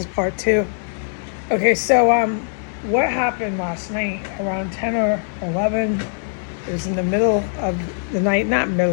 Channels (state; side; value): silent; right; digital silence